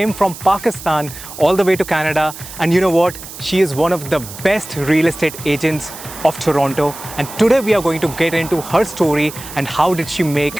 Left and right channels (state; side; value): noise; right; hiss, 13 dB below the sound